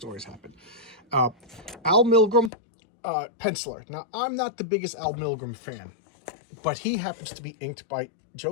happened. Al Milgrom, penciler. Now, I'm not the biggest Al Milgrom fan. but he happens to be inked by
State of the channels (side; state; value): right; drops out; at 2.5 s